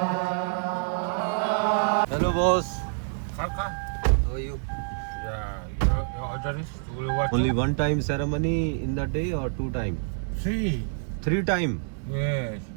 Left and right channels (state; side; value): silent; left; digital silence